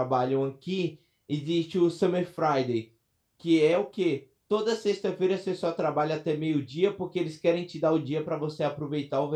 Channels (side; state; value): both; identical; correlation 1.00